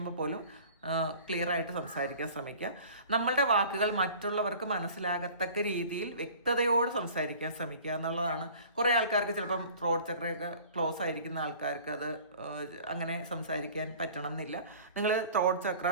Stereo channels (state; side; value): inverted; both; correlation -0.46